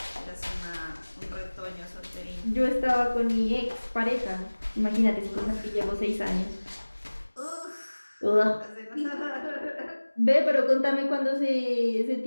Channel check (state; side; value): inverted; both; correlation -1.00